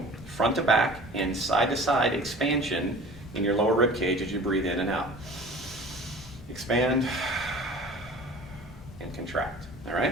front to back and side to side expansion in your lower rib cage as you breathe in and out. Expand and contract, all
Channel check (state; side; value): normal; both; correlation 0.43